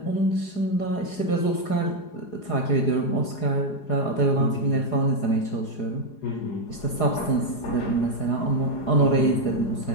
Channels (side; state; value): right; late; 4.8 ms